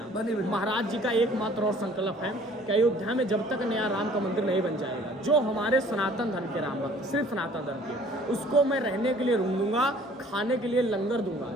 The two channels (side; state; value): both; normal; correlation 0.53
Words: महाराज जी का एकमात्र और संकल्प है कि अयोध्या में जब तक नया राम का मंदिर नहीं बन जाएगा, जो हमारे सनातन धर्म के राम भक्त, सिर्फ सनातन धर्म के, उसको मैं रहने के लिए रूम दूंगा, खाने के लिए लंगर दूंगा।